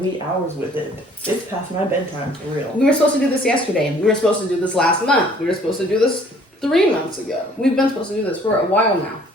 hours with it. It's past my bedtime, for real. We were supposed to do this yesterday. We were supposed to do this last month. We were supposed to do this 3 months ago. We've been supposed to do this for a while now.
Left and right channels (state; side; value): normal; both; correlation 0.57